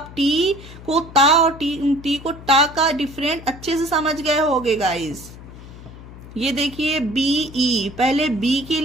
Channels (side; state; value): left; noise; hum, 16 dB below the sound